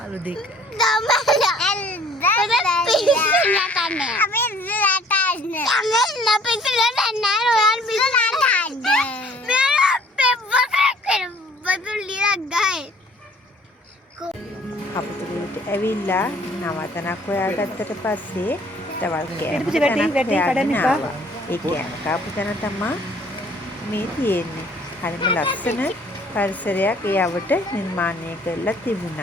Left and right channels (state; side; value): normal; both; correlation 0.56